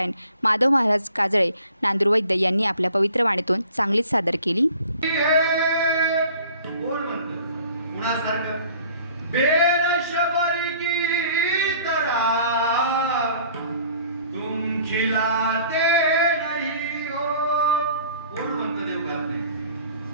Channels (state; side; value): inverted; both; correlation -0.51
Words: माधव महाराज काजळे नांदूरवैद्य यांनी आपल्या पवित्र वाणीतून चांगलीच सादर केली. खिलाते नहीं हो कोण म्हणतं देव गात नाही.